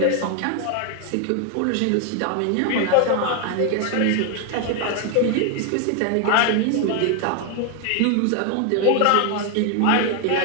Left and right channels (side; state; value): both; different; correlation 0.01